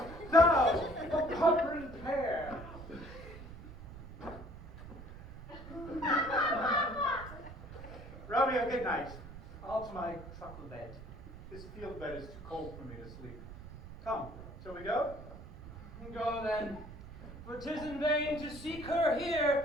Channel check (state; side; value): noise; right; rumble, 14 dB below the sound